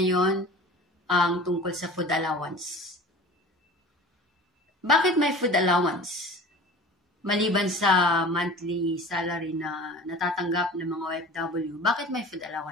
ang tungkol sa food allowance. Bakit may food allowance? Maliban sa monthly salary na natatanggap ng mga OFW, bakit may food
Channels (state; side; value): normal; both; correlation 0.39